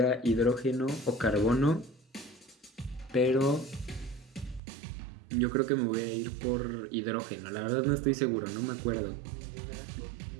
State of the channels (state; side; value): drops out; left; at 4.6 s